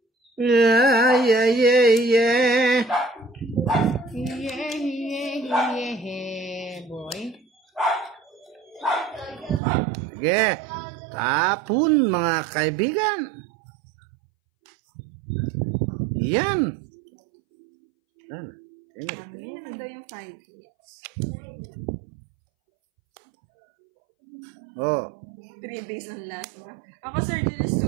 Yeah. Yeah, boy. Sige. Tapon mga kaibigan. Yan. Yan na daw yung 5 hits. Oh. 3 days ng lasma. Ako, Sir Julius,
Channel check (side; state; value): left; drops out; at 9.6 s